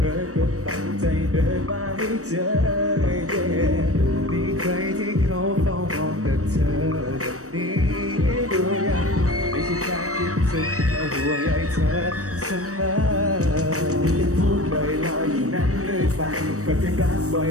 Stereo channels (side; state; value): left; late; 0.65 ms